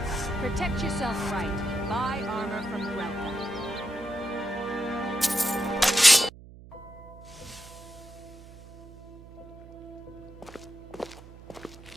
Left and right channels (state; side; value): noise; right; hum, 18 dB below the sound